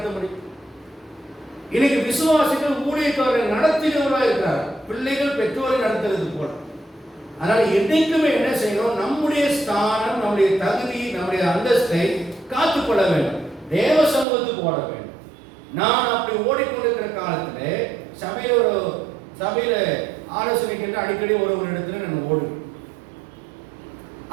முடியும்? இன்னைக்கு விசுவாசிகள் ஊழியக்காரரை நடத்தினவராக இருக்கிறார், பிள்ளைகள் பெற்றோரை நடத்துறது போல. அதனால என்னைக்குமே என்ன செய்யணும்? நம்முடைய ஸ்தானம், நம்முடைய தகுதி, நம்முடைய அந்தஸ்தை காத்துக்கொள்ள வேண்டும், தேவ சமூகத்துக்கு ஓட வேண்டும். நான் அப்படி ஓடிக்கொண்டிருக்கிற காலத்துல சபையில ஆலோசனை கேட்டு அடிக்கடி ஒரு இடத்துல நான் ஓடுவேன்.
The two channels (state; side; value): drops out; left; at 14.2 s